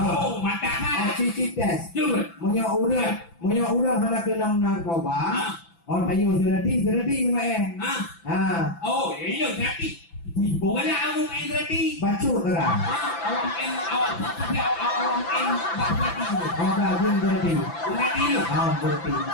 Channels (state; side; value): late; right; 5.9 ms